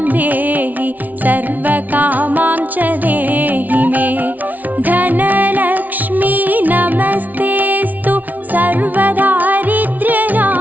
देहि सर्वकामां च देहि मे. धनलक्ष्मी नमस्तेस्तु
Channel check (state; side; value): late; left; 0.077 ms